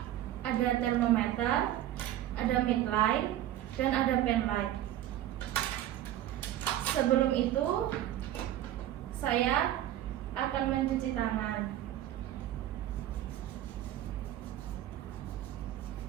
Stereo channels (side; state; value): left; quieter; 12.9 dB